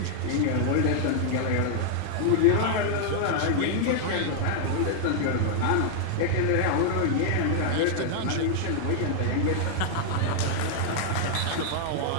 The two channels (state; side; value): different; both; correlation -0.01